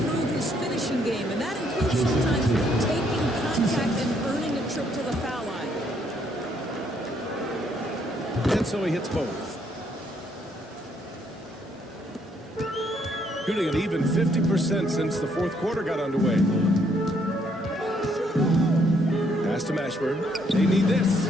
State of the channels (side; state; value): both; normal; correlation 0.70